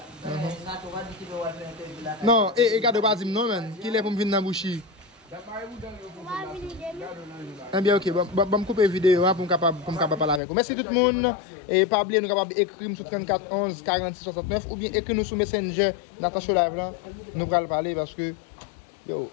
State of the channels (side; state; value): right; drops out; at 10.4 s